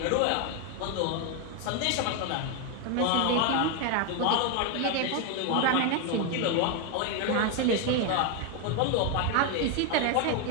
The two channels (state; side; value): different; both; correlation 0.01